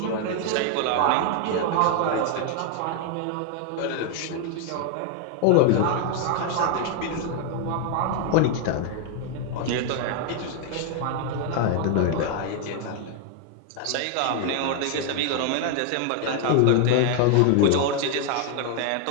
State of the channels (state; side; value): different; both; correlation 0.00